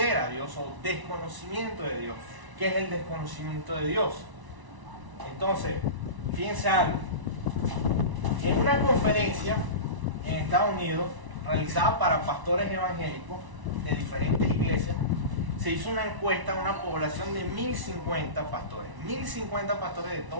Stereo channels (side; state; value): left; late; 1.0 ms